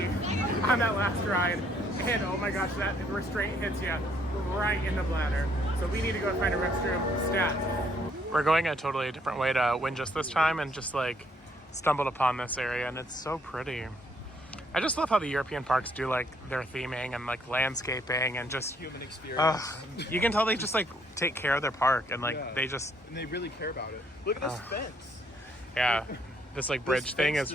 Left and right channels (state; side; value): normal; both; correlation 0.68